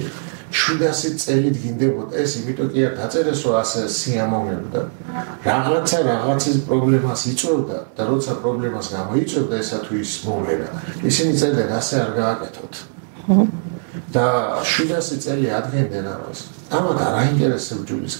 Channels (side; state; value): left; silent; 65 dB below the other